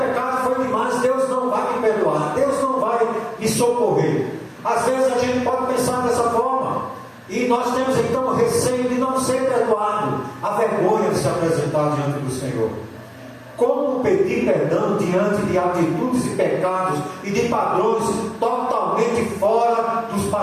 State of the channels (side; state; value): both; identical; correlation 1.00